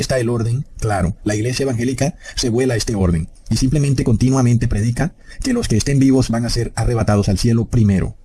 el orden, claro. La iglesia evangélica se vuela a este orden, y simplemente continuamente predica que los que estén vivos van a ser arrebatados al cielo primero.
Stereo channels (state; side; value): identical; both; correlation 1.00